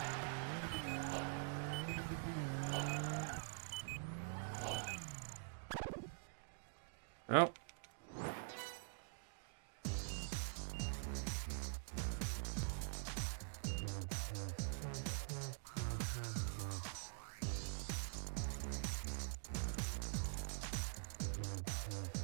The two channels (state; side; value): silent; left; digital silence